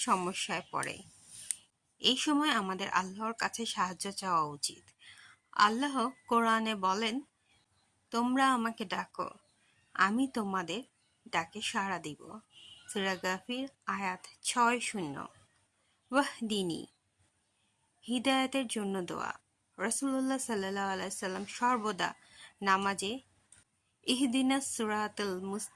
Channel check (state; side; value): identical; both; correlation 1.00